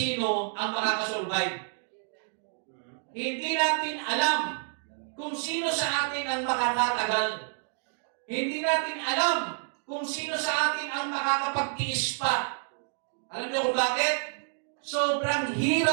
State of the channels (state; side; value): silent; left; 59 dB below the other